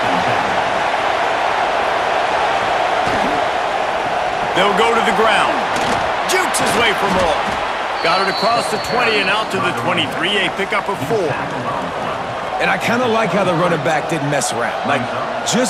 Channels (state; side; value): identical; both; correlation 1.00